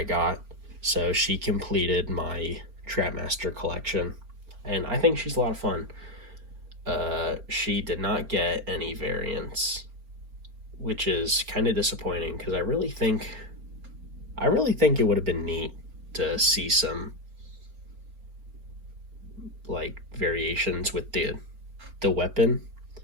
got, so she completed my Trapmaster collection, and I think she's a lot of fun. She did not get any variants, which is kind of disappointing because I really think it would have been neat to see some like variations with the weapon,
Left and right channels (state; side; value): late; left; 4.4 ms